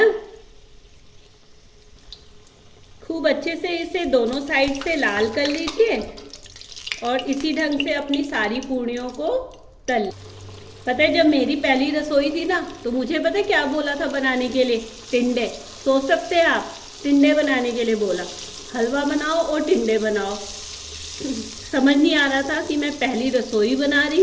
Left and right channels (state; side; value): identical; both; correlation 1.00